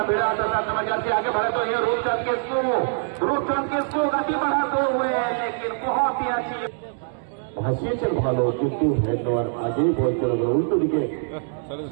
भिड़ा आता था समझ आती आगे बढ़े तो ये रूपचंद के इसको गति बढ़ाते हुए, लेकिन बहुत ही अच्छी ভাসিয়েছেন ভালো, কিন্তু হেড নেওয়ার আগেই বল চলে গেল উল্টো দিকে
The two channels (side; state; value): left; silent; 63 dB below the other